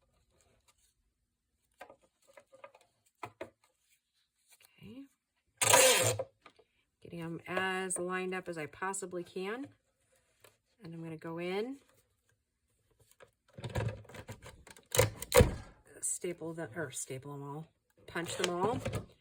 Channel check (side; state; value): both; identical; correlation 1.00